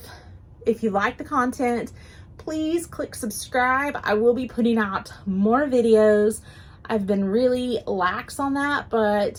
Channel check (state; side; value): identical; both; correlation 1.00